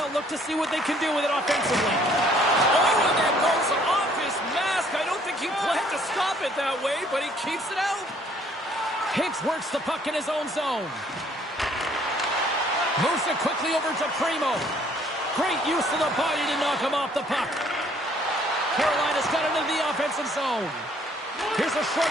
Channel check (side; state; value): both; normal; correlation 0.61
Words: look to see what they can do with it offensively. Oh, and that goes off his mask. I don't think he planned to stop it that way, but he keeps it out. Higgs works the puck in his own zone. Moves it quickly over to Primo. Great use of the body to knock him off the puck. Carolina's got it into the offensive zone. Here's a